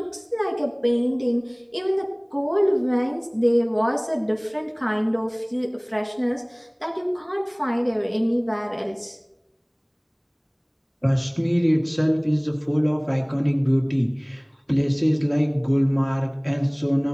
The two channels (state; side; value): identical; both; correlation 1.00